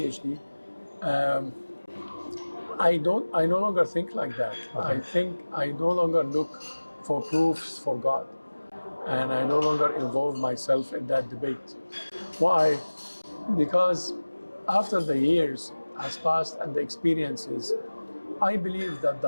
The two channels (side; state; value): both; inverted; correlation -1.00